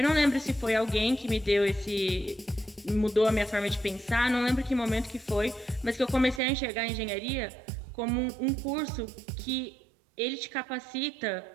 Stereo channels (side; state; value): left; drops out; at 6.4 s